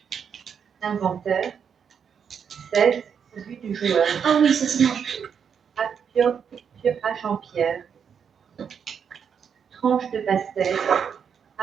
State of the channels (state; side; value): quieter; left; 7.2 dB